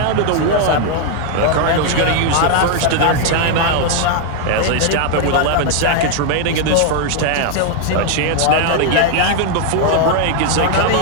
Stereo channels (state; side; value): different; both; correlation 0.00